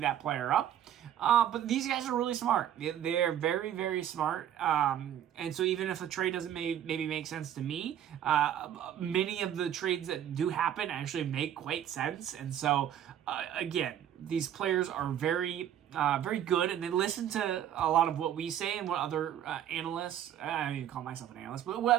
that player up. But these guys are really smart. They're very, very smart. And so even if a trade doesn't maybe make sense to me, many of the trades that do happen actually make quite sense. And so, again, these players are very, very good, and they listen to a lot of what we say and what other analysts, I don't even call myself an analyst, but what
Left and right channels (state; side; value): quieter; left; 10.5 dB